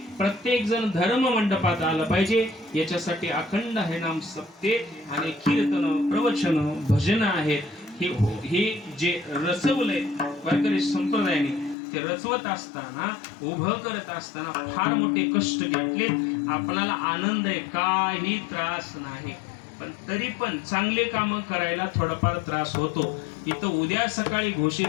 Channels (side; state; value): right; drops out; at 11.8 s